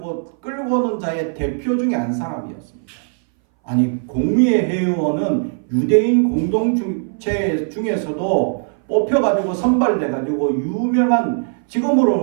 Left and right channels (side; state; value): left; silent; 62 dB below the other